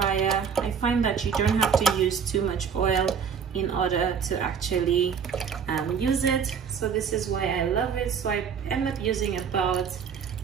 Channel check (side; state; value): left; quieter; 7.0 dB